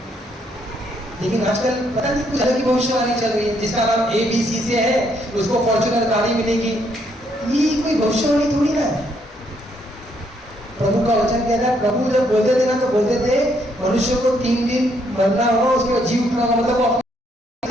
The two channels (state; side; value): normal; both; correlation 0.72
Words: लेकिन आजकल पता नहीं कुछ अलग की भविष्यवाणी चल रही है, जिसका नाम ABC से है, उसको फॉर्च्यूनर गाड़ी मिलेगी। ये कोई भविष्यवाणी थोड़ी ना है। प्रभु का वचन कहता है, प्रभु जब बोलते थे ना, तो बोलते थे मनुष्य को 3 दिन मरना होगा, उसके बाद जी उठना होगा। मतलब